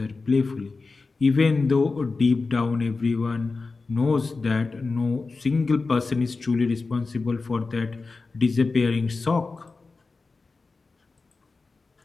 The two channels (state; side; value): quieter; right; 4.0 dB